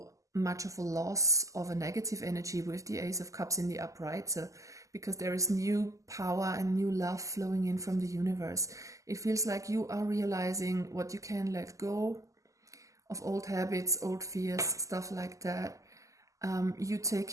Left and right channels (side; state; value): left; late; 0.16 ms